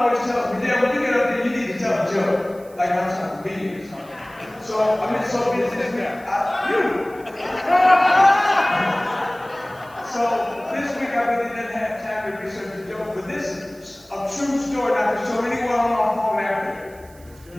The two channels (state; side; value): noise; right; hiss, 26 dB below the sound